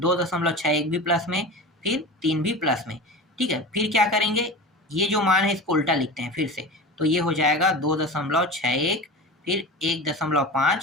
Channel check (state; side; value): normal; both; correlation 0.31